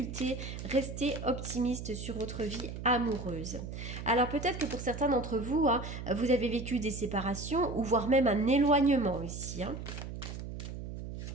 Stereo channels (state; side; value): noise; right; hum, 8 dB below the sound